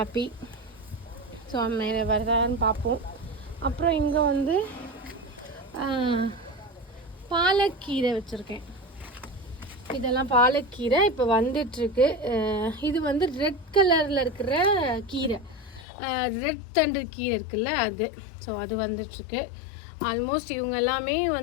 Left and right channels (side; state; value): right; drops out; at 15.9 s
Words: ஸோ மேலே வருதான்னு பார்ப்போம். அப்புறம் இங்கே வந்து பாலக்கீரை வச்சுருக்கேன். இதெல்லாம் பாலக்கீரை இப்போ வந்துட்டுருக்கு. இது வந்து ரெட் கலரில் இருக்கிற கீரை, ரெட் தண்டு கீரை இருக்குல்ல அது. ஸோ அது வந்துட்டுருக்கு. ஆல்மோஸ்ட் இவங்க எல்லாமே